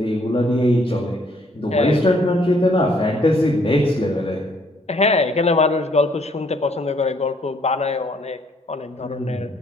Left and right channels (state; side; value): normal; both; correlation 0.66